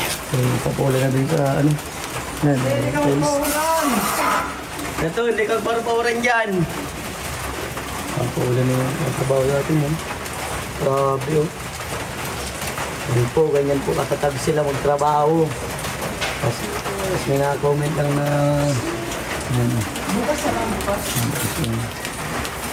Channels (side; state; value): both; identical; correlation 1.00